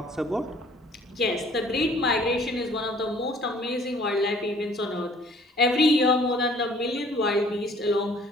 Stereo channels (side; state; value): both; normal; correlation 0.55